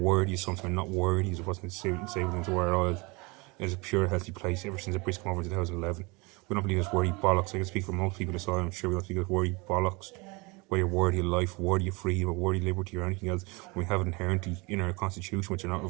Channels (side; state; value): left; quieter; 26.9 dB